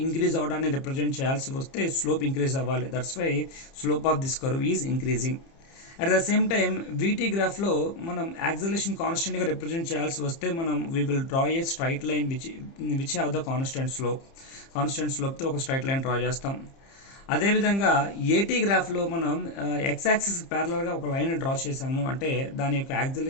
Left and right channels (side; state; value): right; late; 30 ms